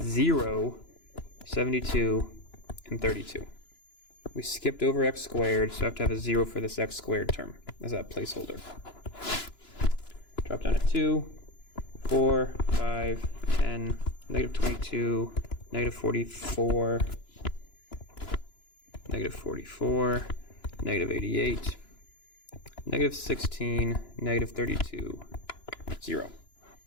0, 72, and 32. We skipped over x squared, so I have to have a 0 for this x squared term as that placeholder. Drop down to 2, 4, 5, 10, negative 22, negative 44, negative 44, negative 88, negative 16, negative 32, 0.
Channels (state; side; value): late; right; 2.9 ms